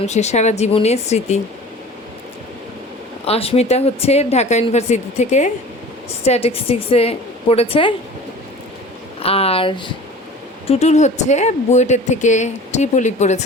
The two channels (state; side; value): normal; both; correlation 0.41